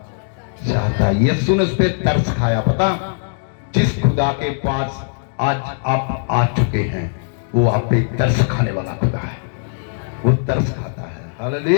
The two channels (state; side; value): silent; right; digital silence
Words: चाहता है? यीशु ने उस पर तरस खाया। पता, जिस खुदा के पास आज आप आ चुके हैं, वो आप पे तरस खाने वाला खुदा है, वो तरस खाता है।